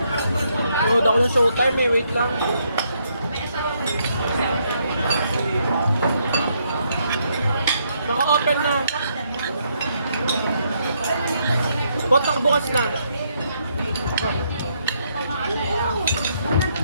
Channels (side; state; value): both; inverted; correlation -0.74